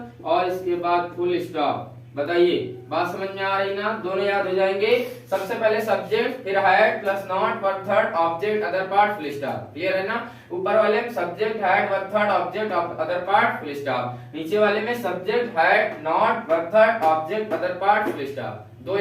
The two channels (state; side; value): identical; both; correlation 1.00